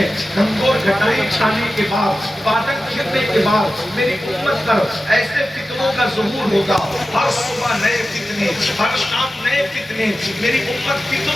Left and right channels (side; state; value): both; normal; correlation 0.94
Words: گھنگور گھٹائیں چھانے کے بعد بادل گرنے کے بعد میری امت پر ایسے فتنوں کا ظہور ہوگا. ہر صبح نئے فتنے، ہر شام نئے فتنے. میری امت